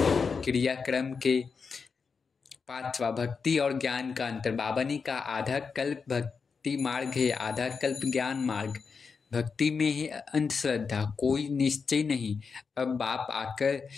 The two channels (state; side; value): quieter; right; 5.3 dB